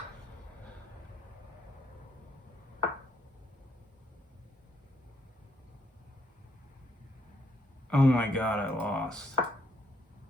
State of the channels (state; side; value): normal; both; correlation 0.74